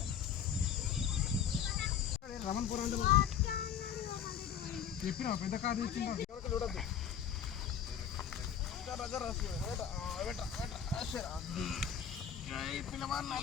రమణపూర్ అంటే చెప్పిన పెద్ద కాదు ఇచ్చిందా చూడద్దు. పిల్లవాడు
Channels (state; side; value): quieter; right; 8.3 dB